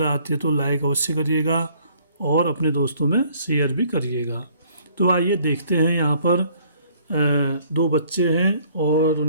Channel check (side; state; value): both; inverted; correlation -0.60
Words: आती है तो लाइक अवश्य करिएगा और अपने दोस्तों में शेयर भी करिएगा। तो आइए देखते हैं, यहाँ पर दो बच्चे हैं और